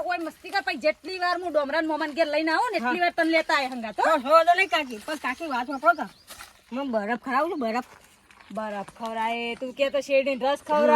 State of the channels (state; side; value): identical; both; correlation 1.00